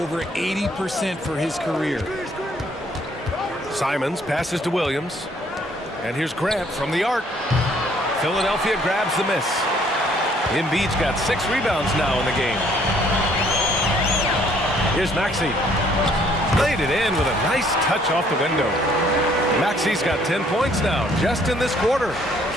80% for his career. Simons passes to Williams. And here's Grant from the arc. Philadelphia grabs the miss. Embiid's got 6 rebounds now in the game. Here's Maxey. Laid it in with a nice touch off the window. Maxey's got 10 points now, just in this quarter.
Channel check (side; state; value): both; normal; correlation 0.63